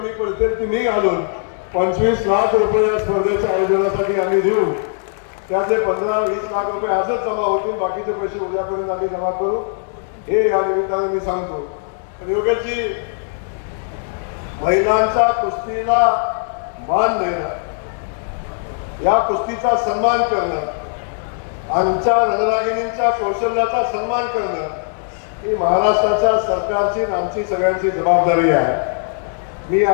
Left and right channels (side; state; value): right; silent; digital silence